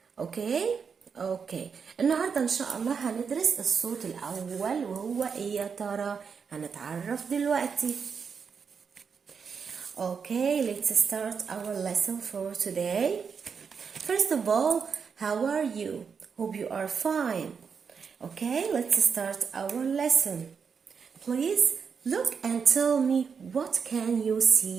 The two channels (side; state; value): left; quieter; 6.2 dB